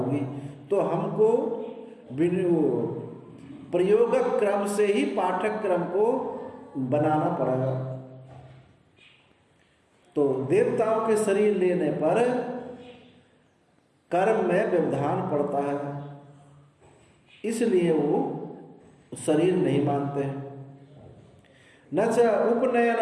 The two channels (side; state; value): both; identical; correlation 1.00